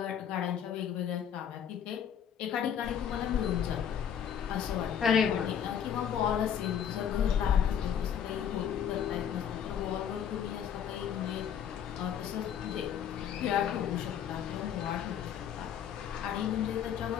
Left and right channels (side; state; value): right; quieter; 8.7 dB